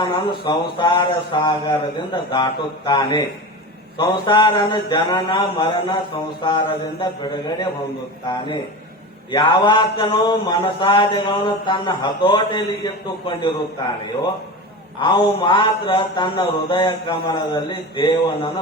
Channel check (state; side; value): normal; both; correlation 0.27